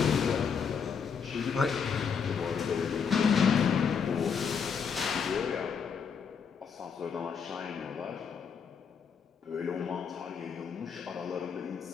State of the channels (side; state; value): right; quieter; 6.4 dB